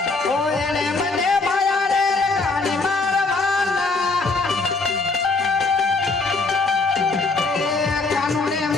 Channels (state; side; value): quieter; right; 3.8 dB